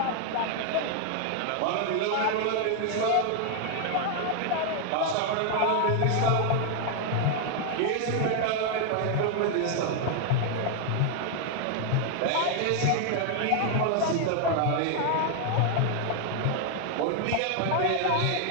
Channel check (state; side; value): different; both; correlation 0.00